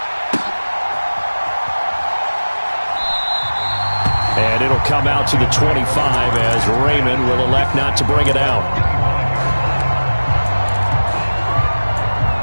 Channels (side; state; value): both; inverted; correlation -1.00